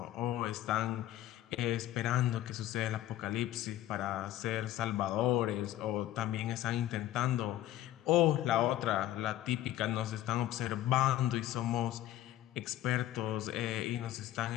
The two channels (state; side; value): quieter; right; 13.6 dB